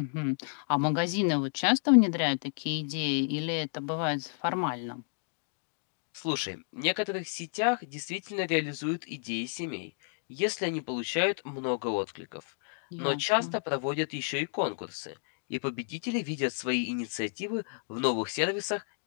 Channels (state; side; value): silent; right; digital silence